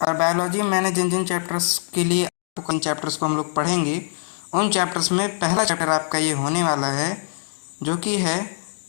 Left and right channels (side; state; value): right; silent; digital silence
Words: बायोलॉजी मैंने जिन जिन चैप्टर्स के लिए आपको किन चैप्टर्स को हम लोग पढ़ेंगे, उन चैप्टर्स में पहला चैप्टर आपका ये होने वाला है जो कि है